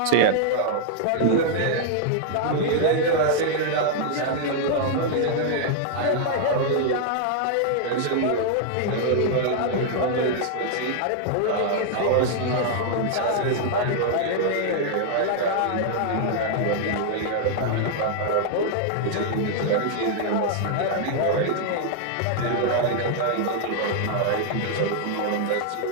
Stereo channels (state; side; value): different; both; correlation -0.01